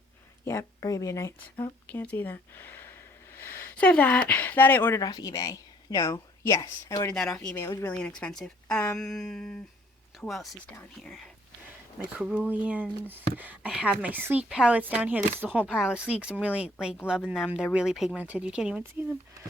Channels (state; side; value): normal; both; correlation 0.61